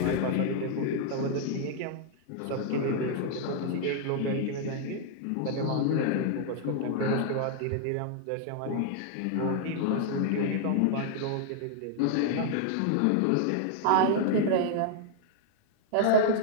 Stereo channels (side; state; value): both; different; correlation 0.00